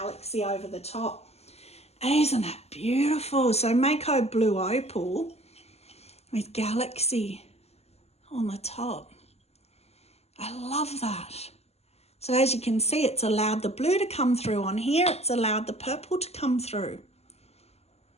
over the top. Isn't that beautiful? So Mayco blue opal with galaxy on the top. I love that. So as you can see, it's allowed the blue to come through on here. It's allowed the purple to come through.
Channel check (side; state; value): right; late; 0.30 ms